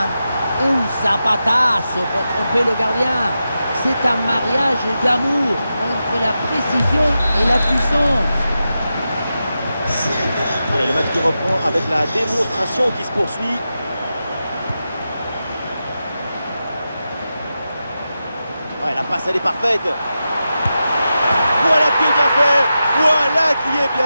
un zapatazo pour tromper le gardien. C'est un mariage d'amour entre la précision et la puissance. Allez, le match qui reprend avec la démonstration qui se poursuit. Ouais, la passe elle est parfaite. Voilà qui est bien fait. Voilà qui est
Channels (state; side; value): inverted; both; correlation -0.90